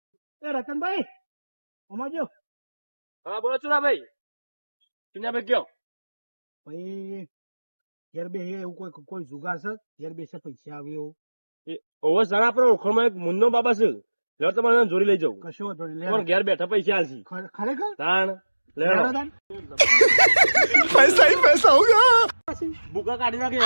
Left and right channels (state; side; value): inverted; both; correlation -1.00